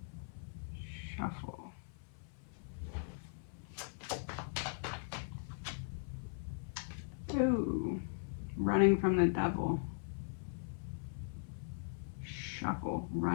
Shuffle. Ooh, running from the devil. Shuffle,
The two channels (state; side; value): silent; right; 51 dB below the other